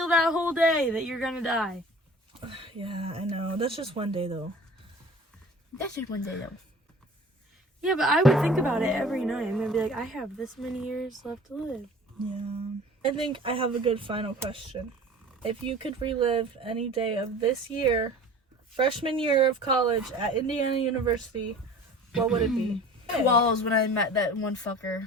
that whole day that you're gonna die? Yeah, I know. That's just one day though. That's just one day, though. Yeah, but I would think about it every night and then be like, I have this many years left to live. Yeah. I think I have a good final question. If you could relive any day of this year, freshman year of college at Indiana University, what would it be? Well, it was when I met that one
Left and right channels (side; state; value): both; normal; correlation 0.43